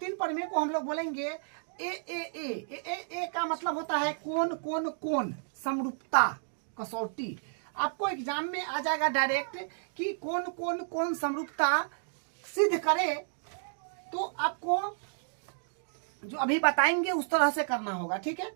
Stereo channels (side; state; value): left; silent; digital silence